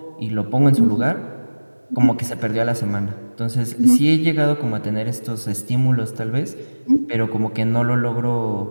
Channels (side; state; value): both; inverted; correlation -1.00